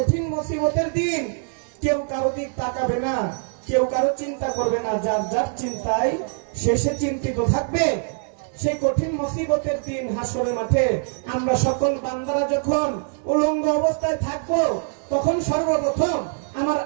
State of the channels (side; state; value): left; silent; 59 dB below the other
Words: মুসিবতের দিন কেউ কারো দিক তাকাবে না, কেউ কারো চিন্তা করবে না, যার যার চিন্তায় শেষে চিন্তিত থাকবে। সেই কঠিন মুসিবতের দিন হাসরের মাঠে আমরা সকল বান্দারা যখন উলঙ্গ অবস্থায় থাকবো, তখন সর্বপ্রথম আমার